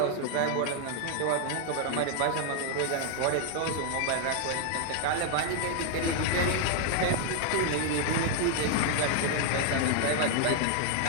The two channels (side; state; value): both; different; correlation 0.00